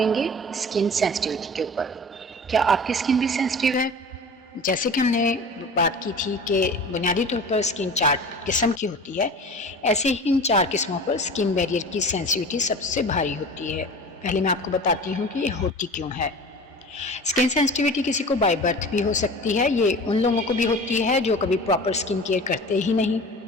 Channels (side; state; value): both; normal; correlation 0.37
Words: گے اسکن سینسٹیوٹی کے اوپر۔ کیا آپ کی اسکن بھی سینسٹیو ہے؟ جیسے کہ ہم نے بات کی تھی کہ بنیادی طور پر اسکن 4 قسم کی ہوتی ہے، ایسے ہی ان 4 قسموں پر اسکن بیریئر کی سینسٹیوٹی سب سے بھاری ہوتی ہے۔ پہلے میں آپ کو بتاتی ہوں کہ یہ ہوتی کیوں ہے۔ اسکن سینسٹیوٹی کسی کو بائی برتھ بھی ہو سکتی ہے، یہ ان لوگوں کو بھی ہوتی ہے جو کبھی پراپر اسکن کیئر کرتے ہی نہیں،